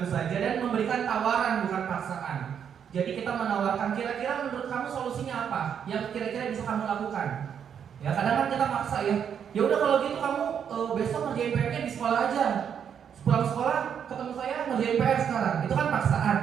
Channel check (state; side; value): quieter; left; 8.0 dB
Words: saja dan memberikan tawaran bukan paksaan. Jadi kita menawarkan kira-kira menurut kamu solusinya apa yang kira-kira bisa kamu lakukan. Ya kadang kan kita maksa ya. Ya udah kalau gitu kamu besok ngerjain PR-nya di sekolah aja. Pulang sekolah ketemu saya ngerjain PR sekarang. Itu kan paksaan.